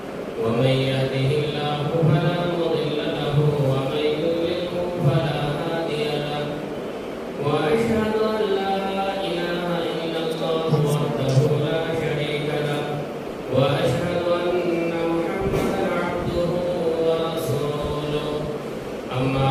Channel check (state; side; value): identical; both; correlation 1.00